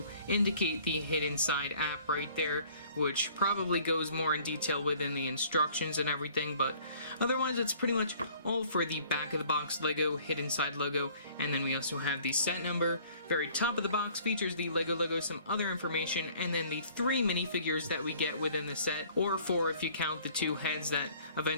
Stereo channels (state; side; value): inverted; both; correlation -0.54